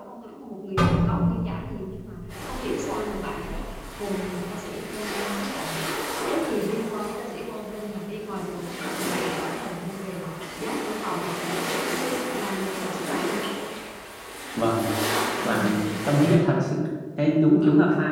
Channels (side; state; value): both; identical; correlation 1.00